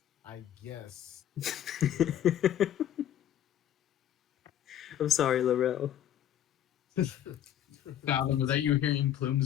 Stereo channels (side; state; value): right; quieter; 10.8 dB